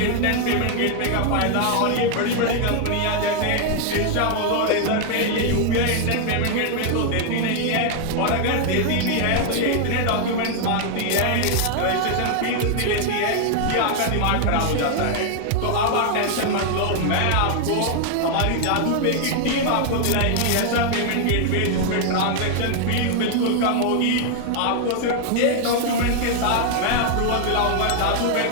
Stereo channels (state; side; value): different; both; correlation 0.00